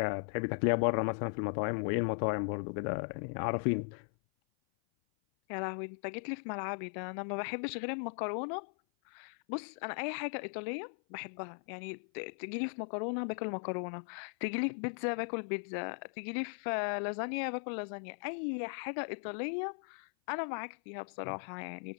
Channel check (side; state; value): right; silent; 53 dB below the other